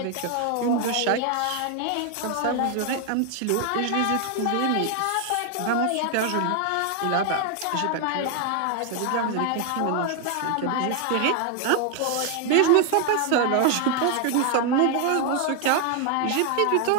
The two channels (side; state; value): both; different; correlation 0.00